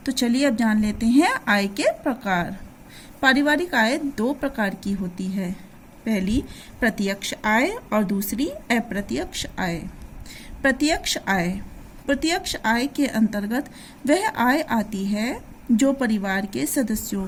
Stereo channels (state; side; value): identical; both; correlation 1.00